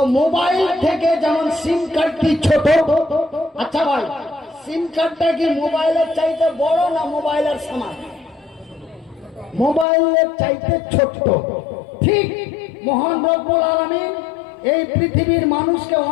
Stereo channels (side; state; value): right; drops out; at 9.9 s